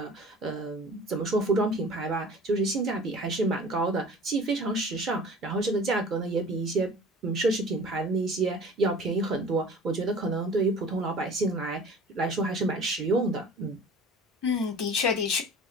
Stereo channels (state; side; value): normal; both; correlation 0.43